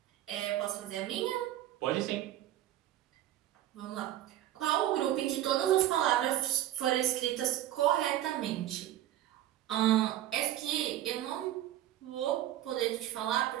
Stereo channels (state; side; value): quieter; left; 13.0 dB